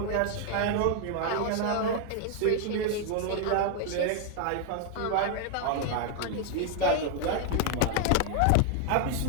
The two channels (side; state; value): both; different; correlation 0.00